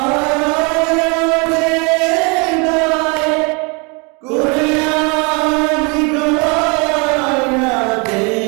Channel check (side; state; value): left; quieter; 31.7 dB